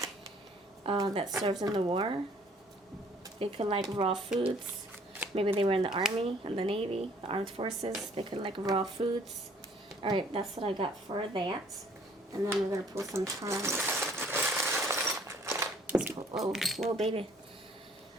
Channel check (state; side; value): normal; both; correlation 0.59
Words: that served in the war. They could like raw foods. Maybe they were in the army and the navy, the armed forces. They could like raw foods. All right, that's what I got for that. And then we're gonna pull some cards. Whoa, whoa, baby.